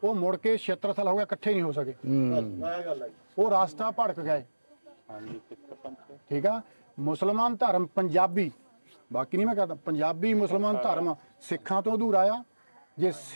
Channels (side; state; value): both; inverted; correlation -1.00